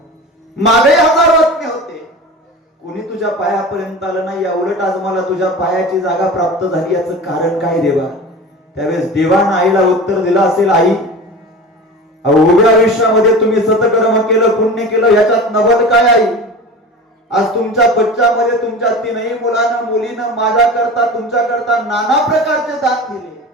मागे हजारो आत्मे होते, कोणी तुझ्या पायापर्यंत आलं नाही, या उलट आज मला तुझ्या पायाची जागा प्राप्त झाली, याचं कारण काय देवा? त्यावेळेस देवानं आईला उत्तर दिलं असेल, आई उभ्या आयुष्यामध्ये तुम्ही सतकर्म केलं, पुण्य केलं, याच्यात नवल काय आई? आज तुमच्या बच्च्यामध्ये तुमच्या तीनही मुलीनं माझ्या करता तुमच्या करता नाना प्रकारचे दान दिले.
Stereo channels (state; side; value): normal; both; correlation 0.33